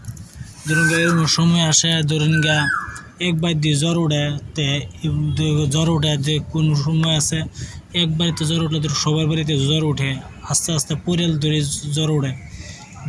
ধরুন এরকম সময় আসে, ধরুন একবার দিয়ে জ্বর ওঠে, যে কোনো সময় আছে এক বাড়িতে জ্বর উঠলে সবার বাড়িতে জ্বর ওঠে, আস্তে আস্তে পরিয়াল ধরে জ্বর ওঠে।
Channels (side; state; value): both; identical; correlation 1.00